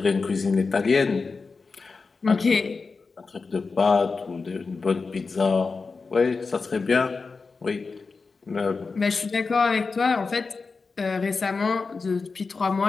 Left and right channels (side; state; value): right; quieter; 4.4 dB